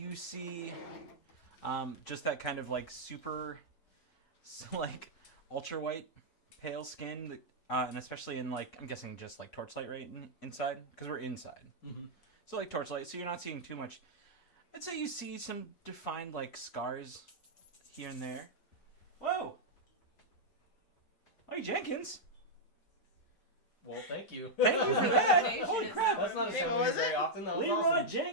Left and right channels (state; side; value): late; right; 5.8 ms